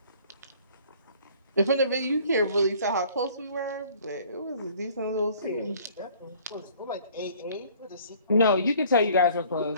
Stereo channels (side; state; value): both; inverted; correlation -0.55